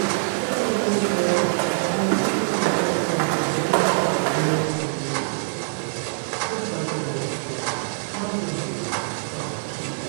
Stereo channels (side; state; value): left; silent; digital silence